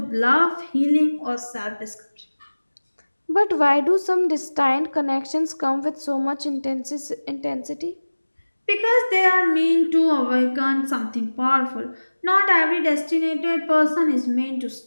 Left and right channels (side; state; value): both; inverted; correlation -1.00